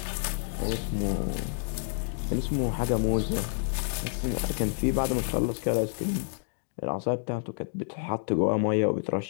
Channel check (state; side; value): silent; right; digital silence